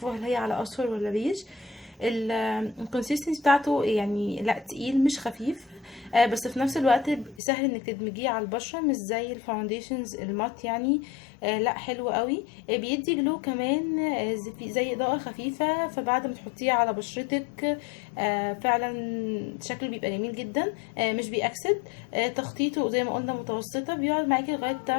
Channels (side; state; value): right; drops out; at 7.4 s